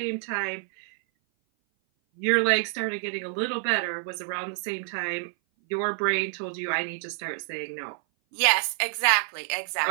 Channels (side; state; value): left; silent; 57 dB below the other